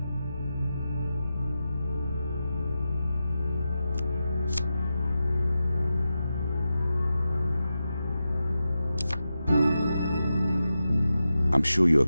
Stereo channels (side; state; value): both; inverted; correlation -0.90